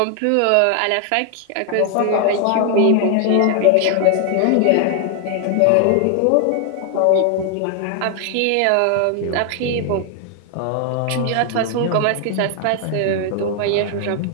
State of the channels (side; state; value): both; different; correlation 0.00